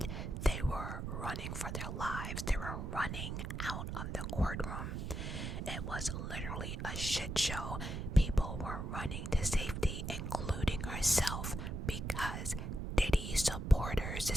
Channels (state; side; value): noise; right; rumble, 4 dB below the sound